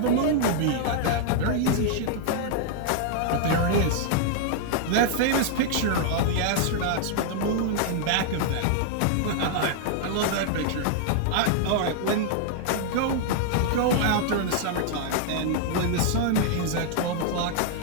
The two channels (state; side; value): different; both; correlation -0.01